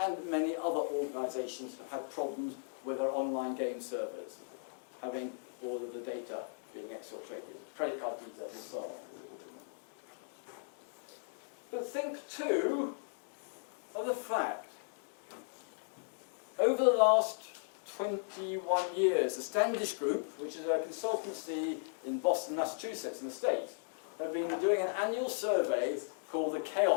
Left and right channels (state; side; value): silent; right; digital silence